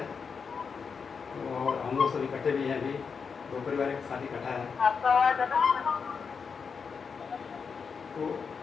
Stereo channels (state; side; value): quieter; right; 5.7 dB